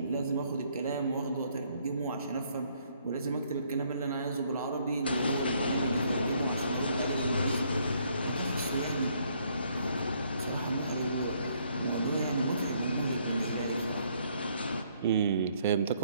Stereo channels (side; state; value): both; inverted; correlation -0.67